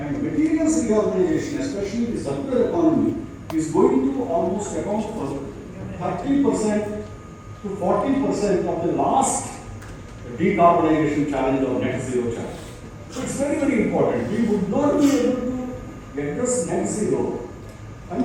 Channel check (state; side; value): identical; both; correlation 1.00